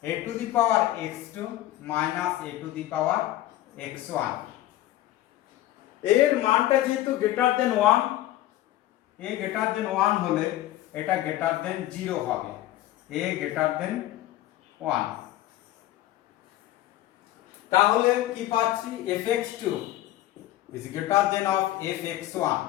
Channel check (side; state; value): right; quieter; 14.7 dB